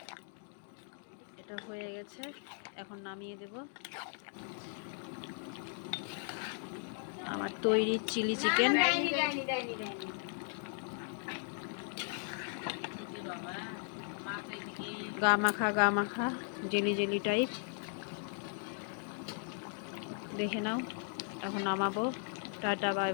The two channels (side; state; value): right; silent; 53 dB below the other